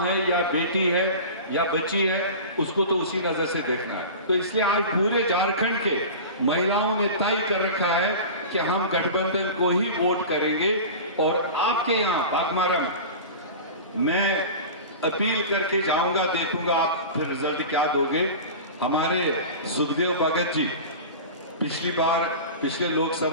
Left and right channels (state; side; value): inverted; both; correlation -0.32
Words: है या बेटी है या बच्ची है, उसको तो उसी नजर से देखना है। तो इसलिए आज पूरे झारखंड के महिलाओं ने तय कर रखा है कि हम गठबंधन को ही वोट करेंगे। और आपके यहाँ बागमारा में मैं अपील करके जाऊंगा, देखूंगा आप फिर रिजल्ट क्या दोगे। हमारे सुखदेव भगत जी पिछले